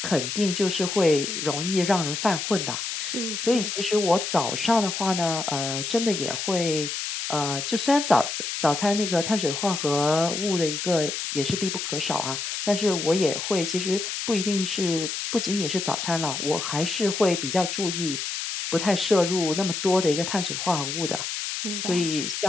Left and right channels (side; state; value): left; noise; hiss, 4 dB below the sound